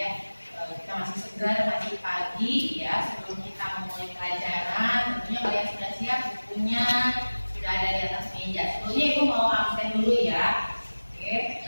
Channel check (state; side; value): inverted; both; correlation -1.00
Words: kita masih segar, masih pagi ya. Sebelum kita memulai pelajaran, tentunya kalian sudah siap bukunya, sudah ada di atas meja. Sebelumnya ibu mau absen dulu ya. Oke,